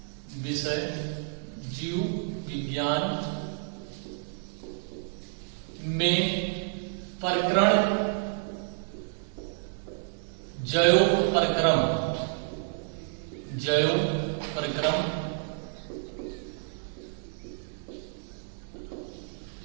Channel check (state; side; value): silent; left; 58 dB below the other